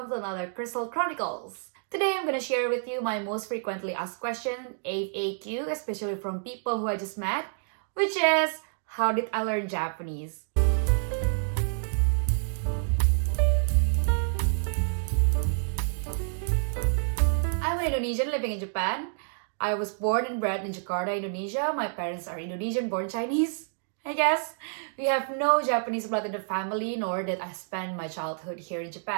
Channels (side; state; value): left; silent; digital silence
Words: to another Chrystal Chronicles. Today I'm going to share with you my most frequently asked question, FAQ, especially from people who I just met, which is, how did I learn Japanese? I'm an Indonesian living in Japan. I was born and bred in Jakarta, Indonesia. My parents are Indonesian born Chinese. I guess we have no Japanese blood in the family, nor did I spend my childhood here in